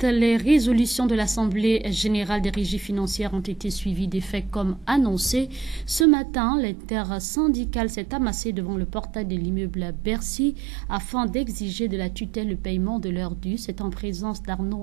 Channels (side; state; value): left; drops out; at 6.1 s